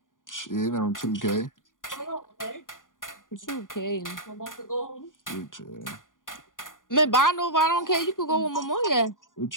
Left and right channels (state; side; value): late; right; 0.88 ms